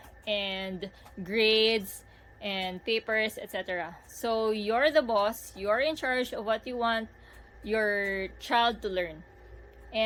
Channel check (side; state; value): both; identical; correlation 1.00